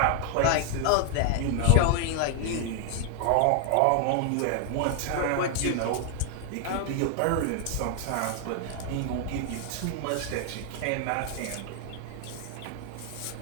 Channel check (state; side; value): different; both; correlation 0.00